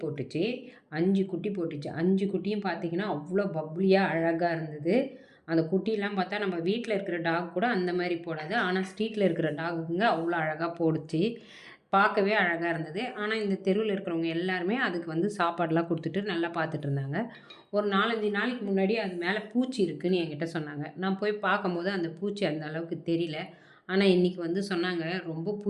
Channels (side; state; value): both; identical; correlation 1.00